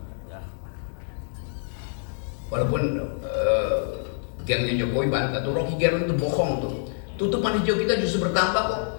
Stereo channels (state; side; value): silent; right; 61 dB below the other